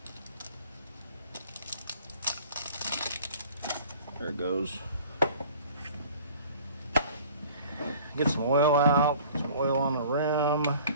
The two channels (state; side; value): inverted; both; correlation -0.48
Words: There it goes. Get some oil out, some oil on the rim, a